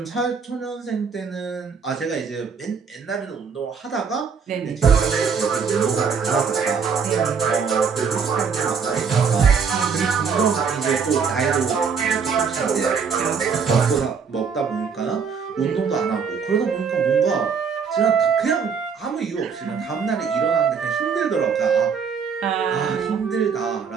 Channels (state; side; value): quieter; left; 6.1 dB